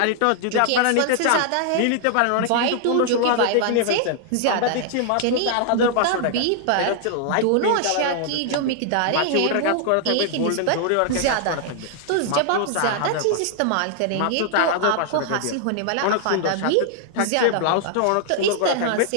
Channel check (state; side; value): different; both; correlation 0.00